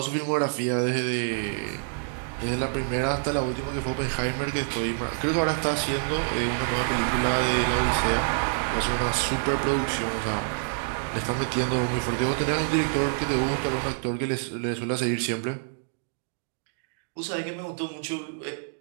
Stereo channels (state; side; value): silent; left; digital silence